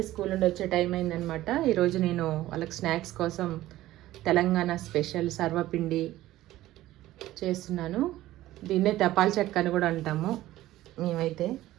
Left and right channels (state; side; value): quieter; left; 15.4 dB